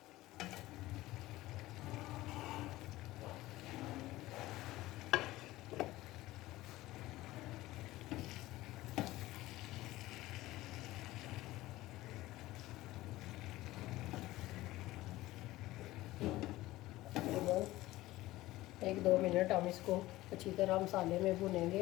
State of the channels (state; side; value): quieter; right; 17.4 dB